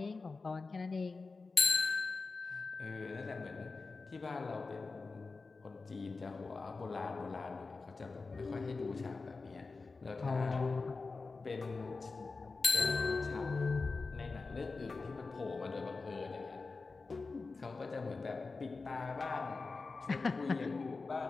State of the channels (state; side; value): quieter; right; 4.0 dB